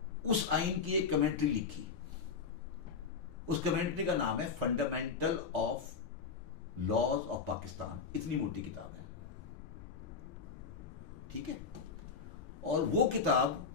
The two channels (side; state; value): right; quieter; 5.3 dB